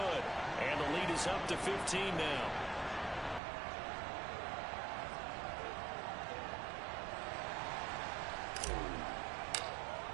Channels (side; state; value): left; drops out; at 3.4 s